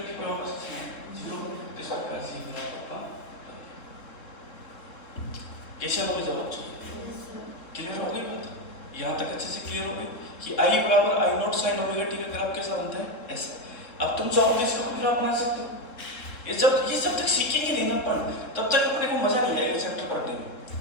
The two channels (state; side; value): late; right; 3.7 ms